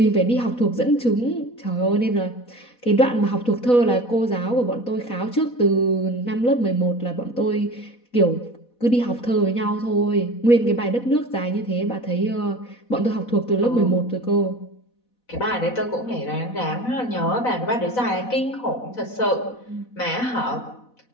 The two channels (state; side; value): late; right; 4.1 ms